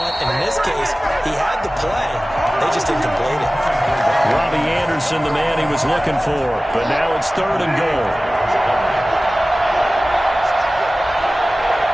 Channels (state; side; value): normal; both; correlation 0.97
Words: And in this case, he had the play. They just didn't complete it. Robbie Anderson, the man he was looking for, but now it's 3rd and goal.